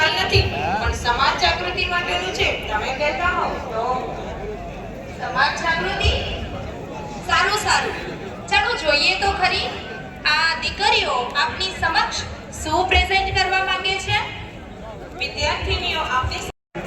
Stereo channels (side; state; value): both; identical; correlation 1.00